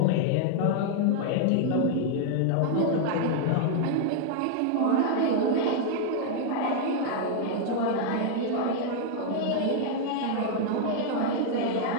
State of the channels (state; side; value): different; both; correlation 0.00